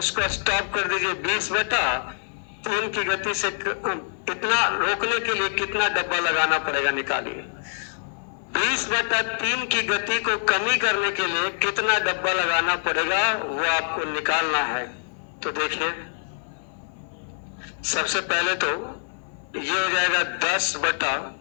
स्टॉप कर दीजिए 20/3 की गति से। इतना रोकने के लिए कितना डब्बा लगाना पड़ेगा निकालिए। 20/3 की गति को कमी करने के लिए कितना डब्बा लगाना पड़ेगा वो आपको निकालना है। तो देखिए सबसे पहले तो ये हो जाएगा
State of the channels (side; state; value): right; silent; 56 dB below the other